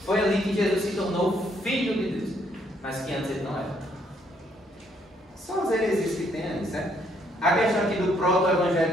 Foi ali que Jesus se tornou filho de Deus, mas que antes ele não era. São as heresias que tem ali, certo? A questão aqui do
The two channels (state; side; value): normal; both; correlation 0.69